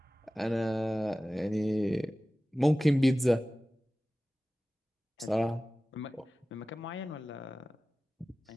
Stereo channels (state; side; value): normal; both; correlation 0.97